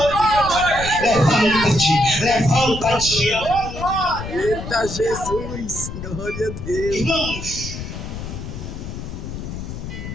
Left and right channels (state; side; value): noise; left; rumble, 8 dB below the sound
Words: Levanta-te. Eita Jesus, glória a Deus. Irmãos,